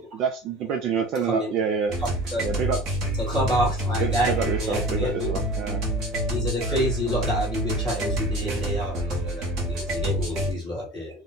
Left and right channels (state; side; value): normal; both; correlation 0.37